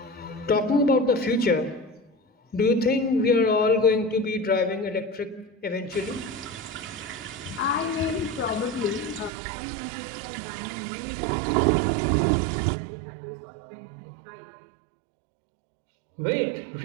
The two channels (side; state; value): left; drops out; at 9.3 s